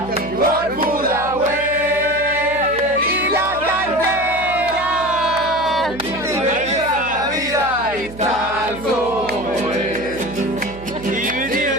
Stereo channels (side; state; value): right; noise; hum, 15 dB below the sound